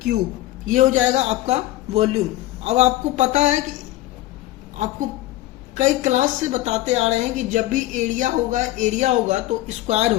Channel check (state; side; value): quieter; right; 15.9 dB